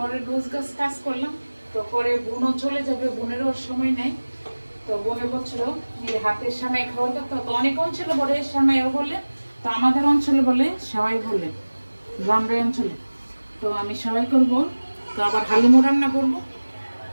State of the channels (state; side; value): inverted; both; correlation -1.00